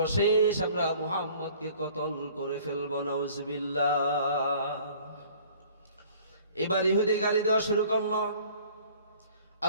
আমরা মুহাম্মদকে কতল করে ফেলব। নাউজুবিল্লাহ। এবার ইহুদি গালি দেওয়া শুরু করলো।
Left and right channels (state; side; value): inverted; both; correlation -0.52